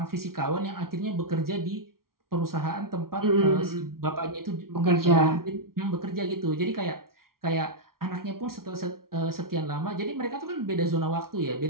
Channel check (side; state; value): left; late; 0.93 ms